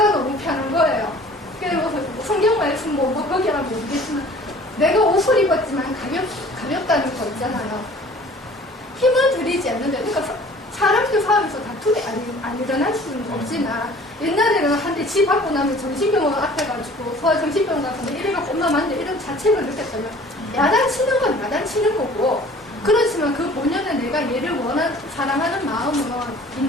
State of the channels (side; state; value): both; normal; correlation 0.49